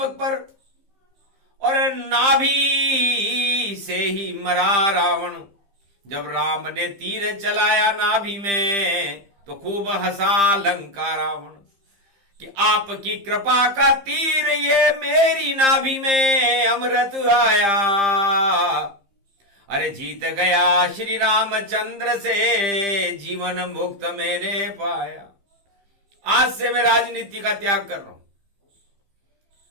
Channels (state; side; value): late; left; 15 ms